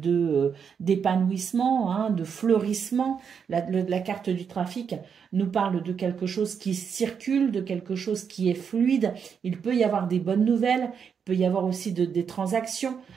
d'épanouissement, de fleurissement. La carte du trafic nous parle de quelque chose qui circule, de quelque chose qui est fluide. Il peut y avoir des bonnes nouvelles, il peut y avoir aussi des transactions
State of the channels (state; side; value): quieter; left; 6.8 dB